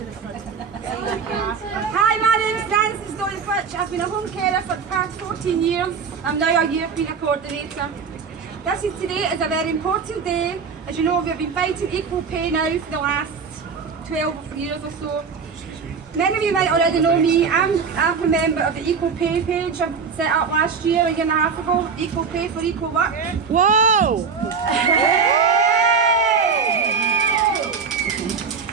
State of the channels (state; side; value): quieter; left; 5.7 dB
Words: Hi, my name's Frances Doyle-Fitch. I've been a home carer for the past 14 years. I'm now a European coordinator. Today is a very important day. As you know, we've been fighting equal pay now for the last 12 years or so. Many of you might already know me. I'm a member of the Equal Pay page I set up last year, a year and a half ago. Equal pay for equal work. Whoa!